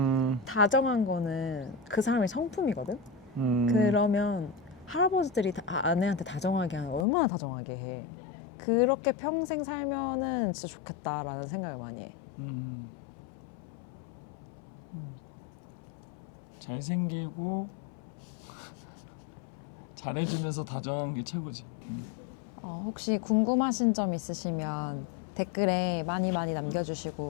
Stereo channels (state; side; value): drops out; right; at 7.1 s